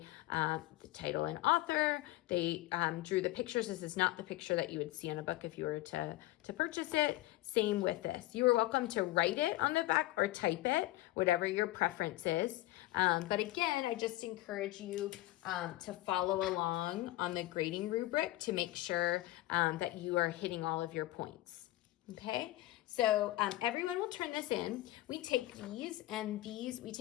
the title and author, they drew the pictures. This is not the picture that you would see in a book if you were to purchase it. Same with this. You are welcome to write it on the back or type it, whatever your preference is. But again, I just encourage you to follow along on the grading rubric to make sure that you are hitting all of your points. Okay, so everyone will turn this in. We take we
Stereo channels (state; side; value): quieter; right; 17.1 dB